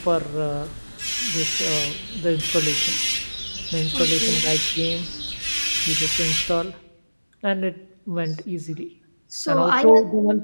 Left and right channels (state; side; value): inverted; both; correlation -1.00